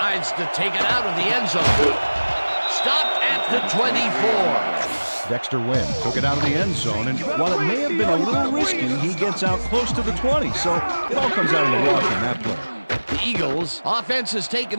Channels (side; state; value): both; inverted; correlation -1.00